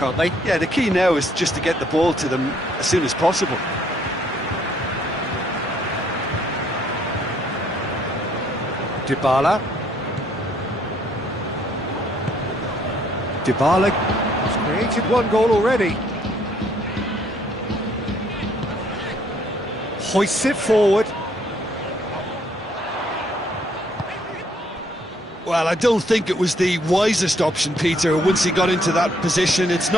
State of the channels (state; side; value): normal; both; correlation 0.66